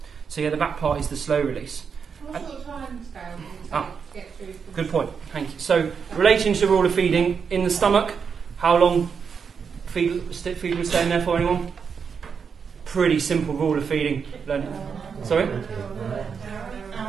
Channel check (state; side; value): quieter; left; 6.3 dB